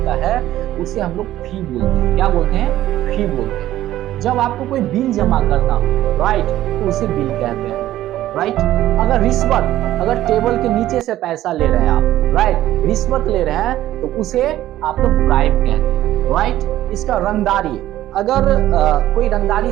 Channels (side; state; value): left; quieter; 13.9 dB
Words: है, उसे हम लोग फी बोलते हैं। क्या बोलते हैं? फी बोलते हैं। जब आपको कोई बिल जमा करना हो, राइट, तो उसे बिल कहते हैं, राइट। अगर रिश्वत, अगर टेबल के नीचे से पैसा ले रहे हैं आप, राइट, रिश्वत ले रहे हैं, तो उसे आप लोग ब्राइब कहते हैं, राइट। इसका रंगदारी, अगर कोई रंगदारी